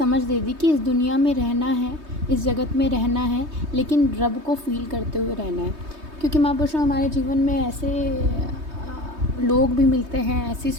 दे दी कि इस दुनिया में रहना है, इस जगत में रहना है, लेकिन रब को फील करते हुए रहना है। क्योंकि महापुरुषों हमारे जीवन में ऐसे लोग भी मिलते हैं, ऐसी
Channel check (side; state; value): left; late; 3.2 ms